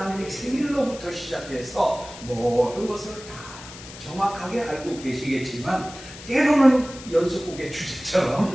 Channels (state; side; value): noise; left; hiss, 15 dB below the sound